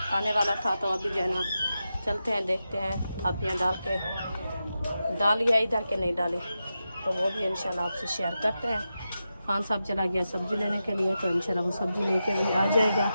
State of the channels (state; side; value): inverted; both; correlation -0.90